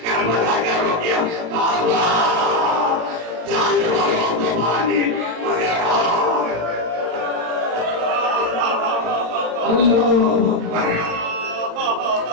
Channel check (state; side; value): late; left; 35 ms